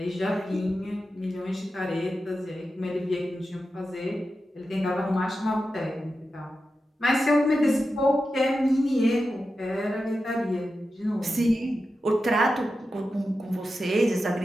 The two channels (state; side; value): normal; both; correlation 0.91